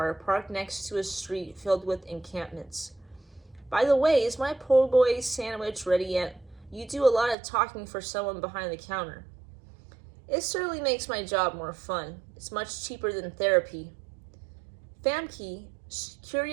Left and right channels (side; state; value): left; drops out; at 7.4 s